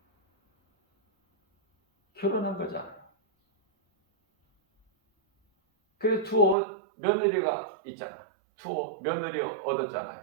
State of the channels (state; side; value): drops out; left; at 6.6 s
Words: 결혼한 거잖아요. 그래서 두 며느리가 있잖아. 두 며느리